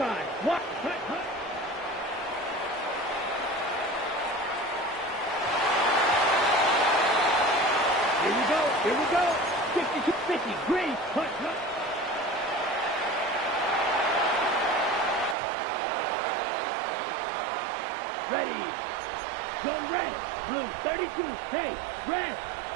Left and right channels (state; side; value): drops out; left; at 15.4 s